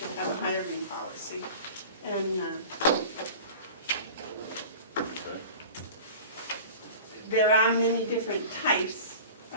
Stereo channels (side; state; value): both; inverted; correlation -0.38